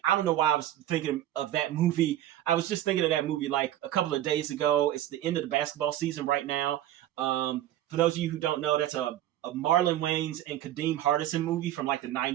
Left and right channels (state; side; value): quieter; left; 13.0 dB